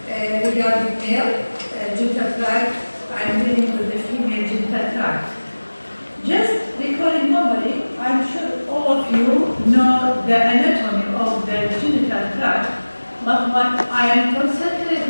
regarding male genital tract. I'm dealing with the female genital tract. Just recalling normally, I'm sure all of you know the anatomy of the genital tract, but what I am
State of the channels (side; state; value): both; inverted; correlation -1.00